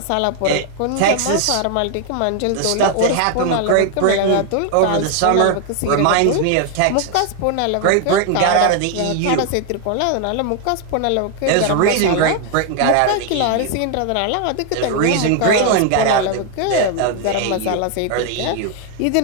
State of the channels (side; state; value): both; different; correlation 0.00